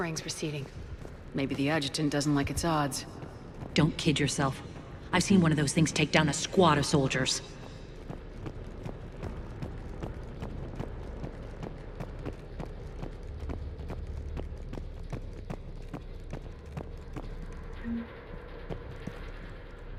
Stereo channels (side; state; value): both; identical; correlation 1.00